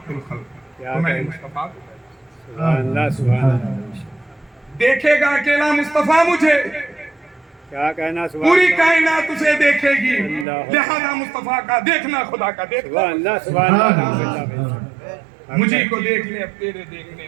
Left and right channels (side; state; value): left; drops out; at 10.5 s